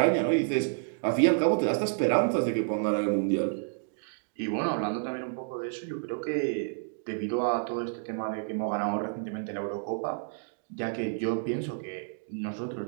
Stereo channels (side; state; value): left; silent; digital silence